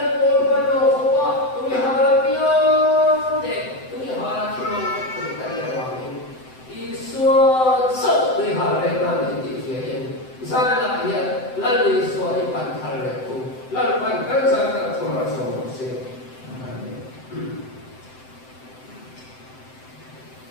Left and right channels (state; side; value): late; right; 7.8 ms